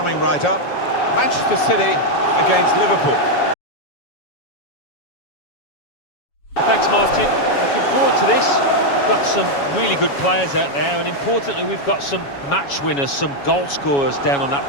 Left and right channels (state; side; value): late; right; 7.2 ms